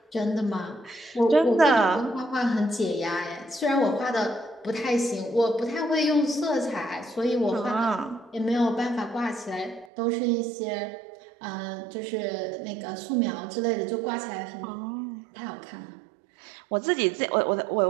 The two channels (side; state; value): left; drops out; at 9.9 s